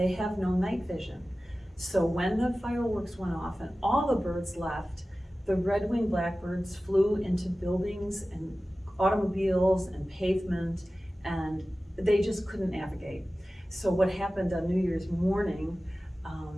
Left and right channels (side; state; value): both; normal; correlation 0.96